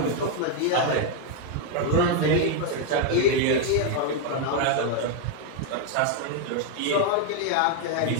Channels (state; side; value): different; both; correlation 0.01